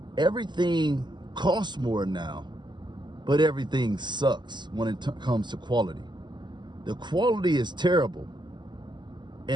Everything costs more now, but everything sucks when it comes to quality. The quality is terrible,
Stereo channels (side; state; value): left; late; 0.21 ms